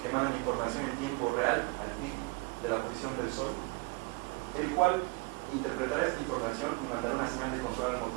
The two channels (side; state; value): left; quieter; 27.1 dB